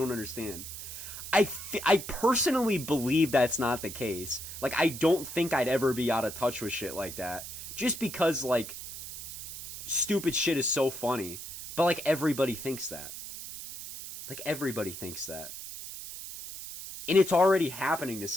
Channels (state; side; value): noise; right; hiss, 10 dB below the sound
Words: understand. I personally believe that's not the case. Like, I don't think I'd ever be out of touch with shit like that, just because, like, stupid shit is so funny. But, like, everybody thinks that. Like, everybody thinks that. And it's already happening to